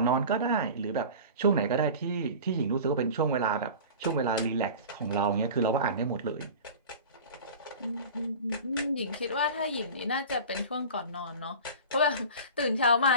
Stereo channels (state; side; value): inverted; both; correlation -0.36